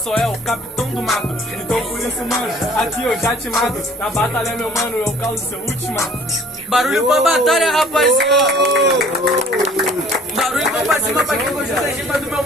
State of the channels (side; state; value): both; normal; correlation 0.52